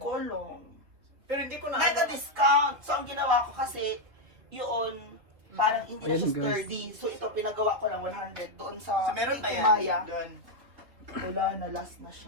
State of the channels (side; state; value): left; late; 3.5 ms